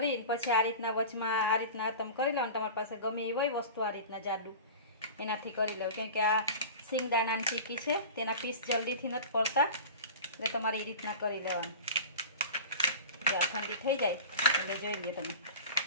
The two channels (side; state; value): both; inverted; correlation -0.35